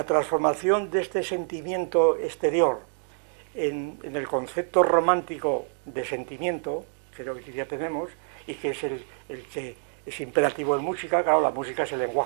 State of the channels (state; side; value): silent; left; 60 dB below the other